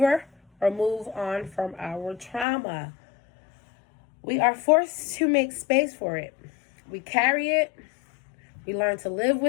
or move on from our trauma. We are forced to make space for it. We carry it, we learn to live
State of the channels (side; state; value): right; drops out; at 2.5 s